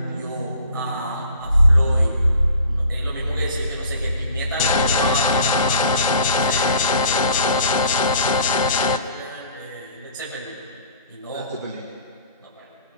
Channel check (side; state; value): both; inverted; correlation -0.51